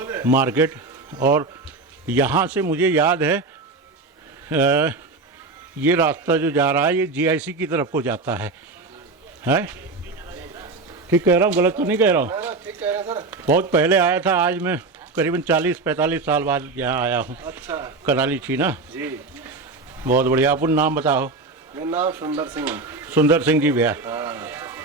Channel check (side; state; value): left; quieter; 3.7 dB